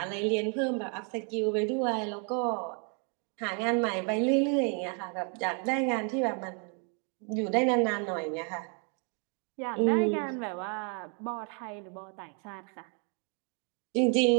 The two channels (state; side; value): quieter; left; 38.2 dB